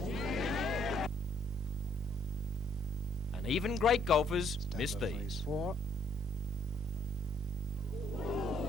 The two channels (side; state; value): both; normal; correlation 0.67